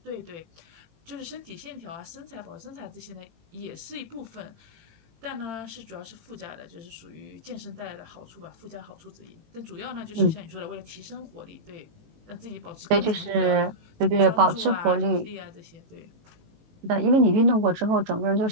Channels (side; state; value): left; late; 18 ms